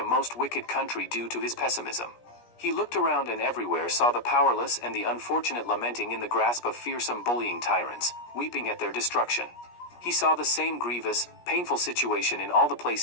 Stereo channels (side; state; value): right; late; 17 ms